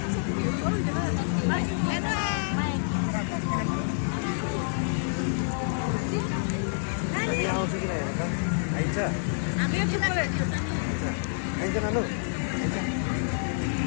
आउँछ कि हेर त आइन्छ आइन्छ नानु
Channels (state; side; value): silent; right; digital silence